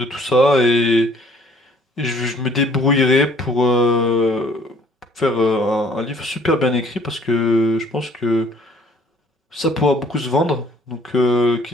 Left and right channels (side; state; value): both; normal; correlation 0.58